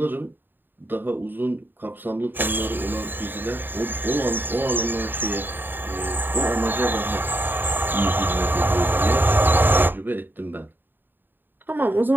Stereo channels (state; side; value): late; left; 0.093 ms